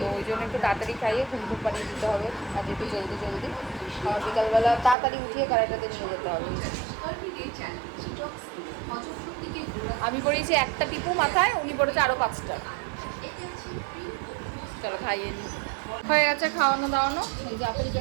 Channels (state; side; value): drops out; left; at 5.0 s